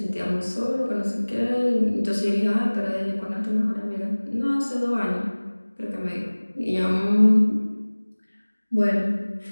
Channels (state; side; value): inverted; both; correlation -1.00